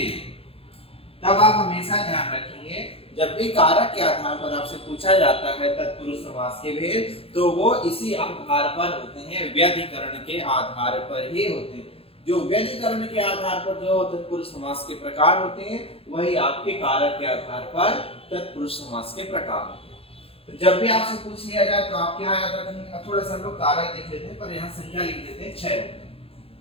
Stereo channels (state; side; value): late; right; 0.27 ms